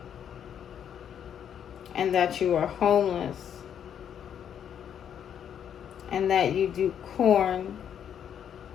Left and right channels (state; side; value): quieter; right; 8.9 dB